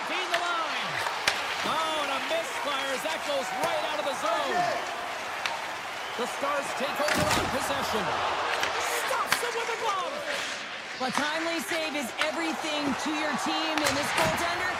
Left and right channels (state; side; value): identical; both; correlation 1.00